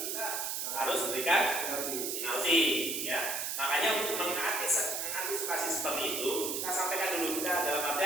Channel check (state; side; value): noise; right; hiss, 2 dB below the sound